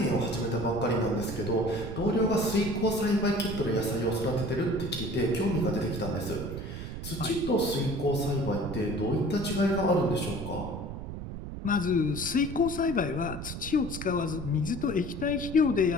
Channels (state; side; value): noise; right; rumble, 8 dB below the sound